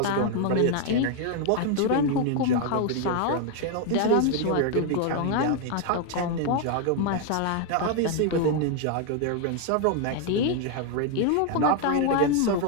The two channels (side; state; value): both; different; correlation 0.01